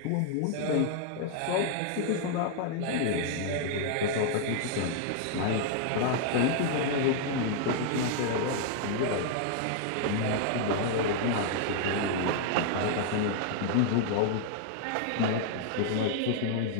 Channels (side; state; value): both; different; correlation 0.00